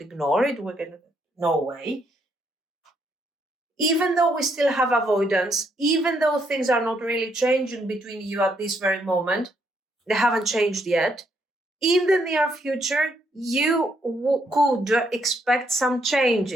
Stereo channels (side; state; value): both; normal; correlation 0.74